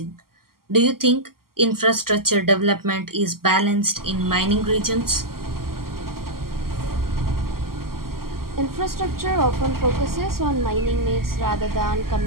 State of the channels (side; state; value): left; late; 0.92 ms